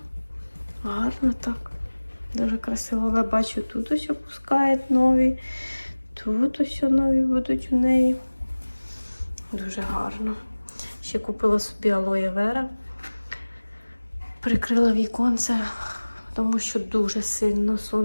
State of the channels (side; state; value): both; inverted; correlation -1.00